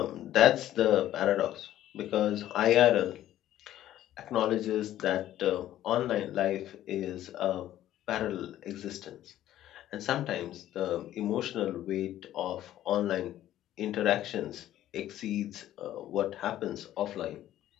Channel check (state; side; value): quieter; right; 12.9 dB